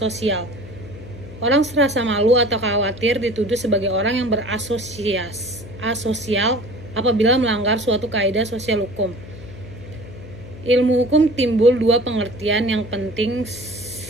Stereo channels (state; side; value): noise; left; hum, 16 dB below the sound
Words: Orang serasa malu atau khawatir dituduh sebagai orang yang asosial apabila melanggar suatu kaidah sosial hukum. Ilmu hukum timbul dua pengertian yang penting